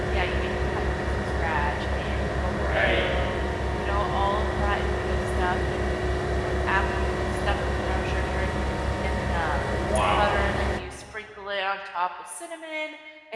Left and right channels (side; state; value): both; identical; correlation 1.00